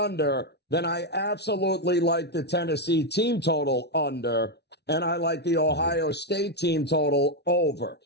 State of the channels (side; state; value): right; late; 0.49 ms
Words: then I absolutely like the Tennessee team total under, and I like the Ohio State team total over.